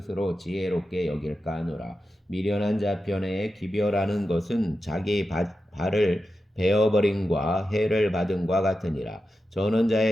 지혜롭게 여길까 하노라. 미련한 자 편에 기별하는 것은 자기 발을 베어버림과 해를 받음과 같으니라. 저는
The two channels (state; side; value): normal; both; correlation 0.91